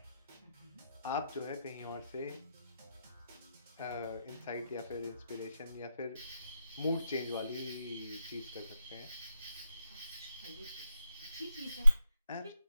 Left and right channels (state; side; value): inverted; both; correlation -0.84